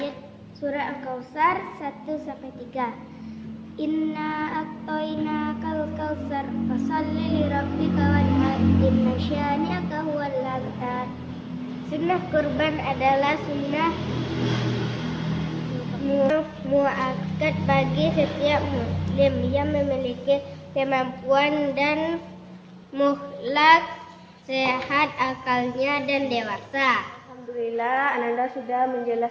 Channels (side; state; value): both; identical; correlation 1.00